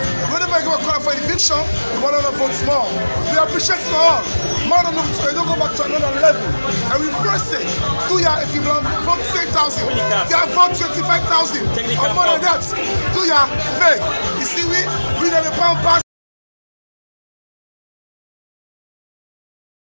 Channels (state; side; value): inverted; both; correlation -1.00